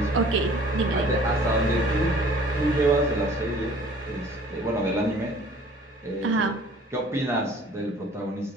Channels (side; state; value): both; normal; correlation 0.51